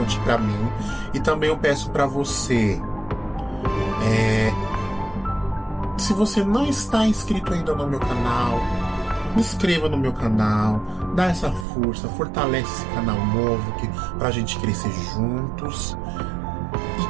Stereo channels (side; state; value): left; drops out; at 11.7 s